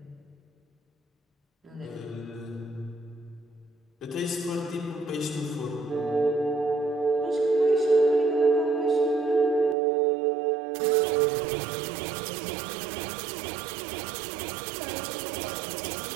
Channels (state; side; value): drops out; left; at 9.8 s